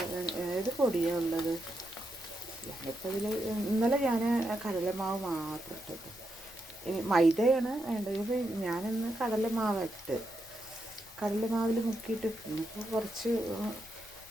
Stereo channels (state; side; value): noise; left; rumble, 26 dB below the sound